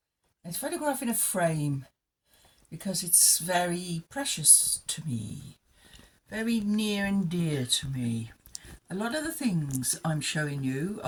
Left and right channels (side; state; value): both; identical; correlation 1.00